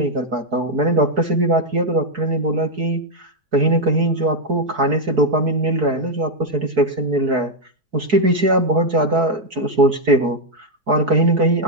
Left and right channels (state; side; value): late; left; 4.6 ms